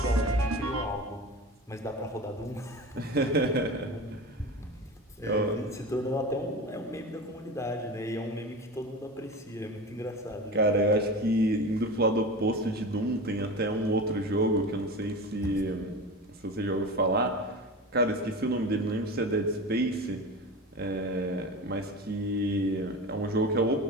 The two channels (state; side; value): normal; both; correlation 0.29